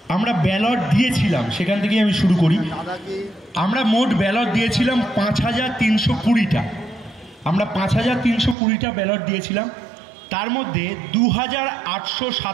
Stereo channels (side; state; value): left; drops out; at 8.6 s